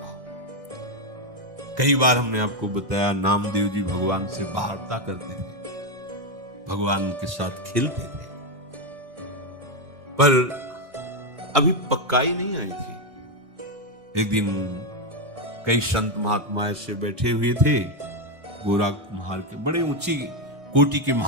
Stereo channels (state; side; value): late; left; 1.6 ms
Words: कई बार हमने आपको बताया, नामदेव जी भगवान से वार्ता करते थे, भगवान के साथ खेलते थे, पर अभी पक्काई नहीं आई थी। एक दिन कई संत महात्मा ऐसे बैठे हुए थे, गोरा कुम्हार के, बड़े ऊंची कोटि के